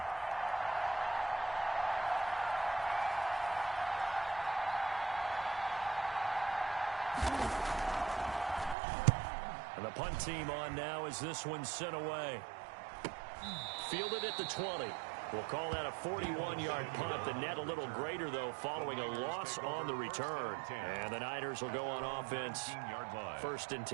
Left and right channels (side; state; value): left; drops out; at 8.8 s